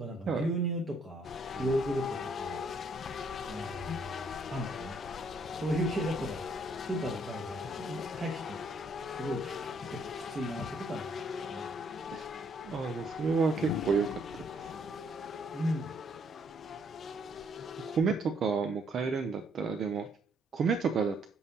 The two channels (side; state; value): both; normal; correlation 0.68